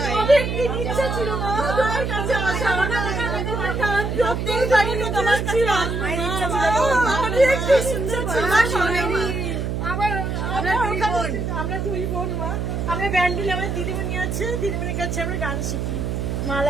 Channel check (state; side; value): noise; right; hum, 2 dB below the sound